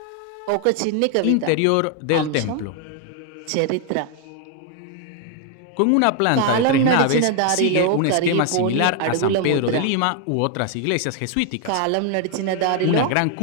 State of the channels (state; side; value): different; both; correlation 0.00